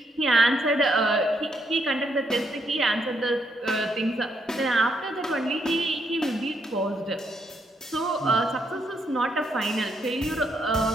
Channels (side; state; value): both; normal; correlation 0.76